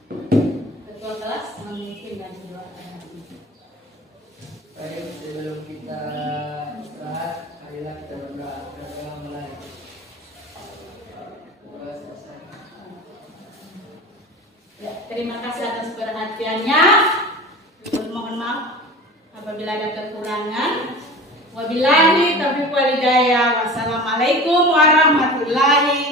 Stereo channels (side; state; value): both; normal; correlation 0.35